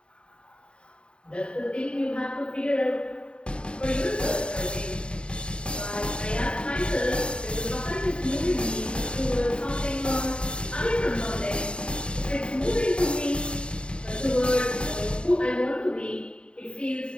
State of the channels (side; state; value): right; late; 0.053 ms